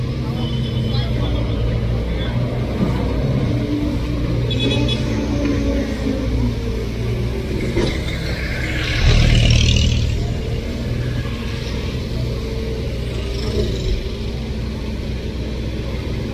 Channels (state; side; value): identical; both; correlation 1.00